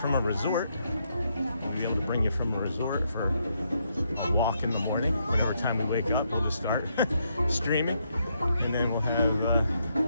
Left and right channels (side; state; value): both; inverted; correlation -0.77